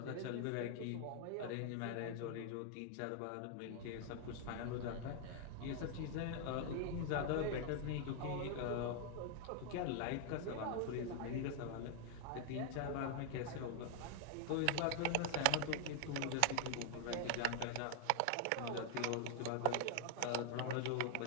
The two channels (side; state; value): both; different; correlation 0.00